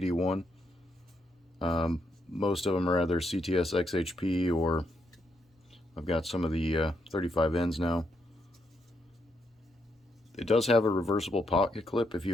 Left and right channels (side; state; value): both; normal; correlation 0.78